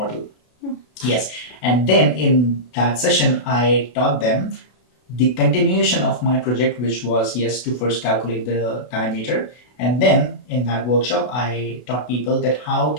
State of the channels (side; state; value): right; late; 32 ms